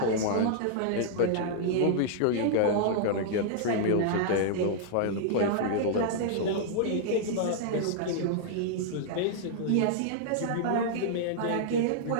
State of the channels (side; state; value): both; different; correlation -0.01